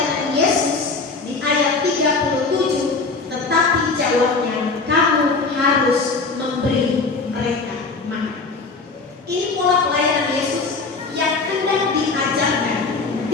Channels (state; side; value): quieter; right; 4.1 dB